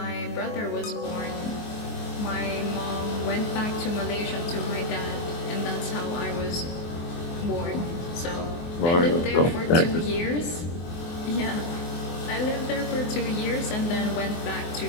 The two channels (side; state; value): right; late; 24 ms